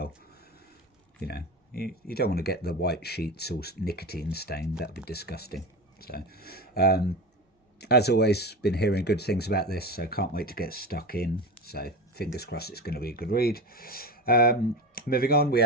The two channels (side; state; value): both; normal; correlation 0.25